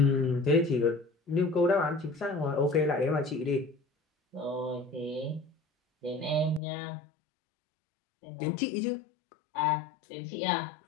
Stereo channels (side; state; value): right; drops out; at 6.6 s